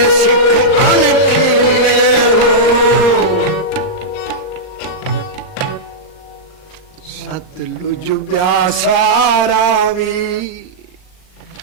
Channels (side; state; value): right; late; 39 ms